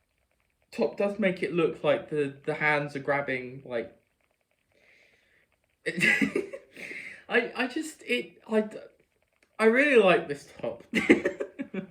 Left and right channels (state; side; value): identical; both; correlation 1.00